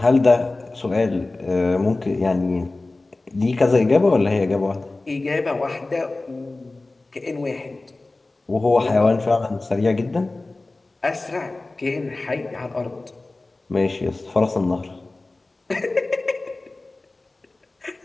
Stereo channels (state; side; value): quieter; right; 3.1 dB